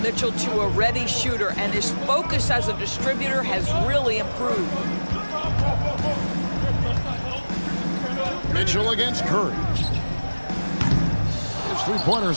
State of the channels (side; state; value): both; inverted; correlation -1.00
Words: Mitchell to a ready shooter, and his focus as a distributor has really improved. Mitchell against Curry. His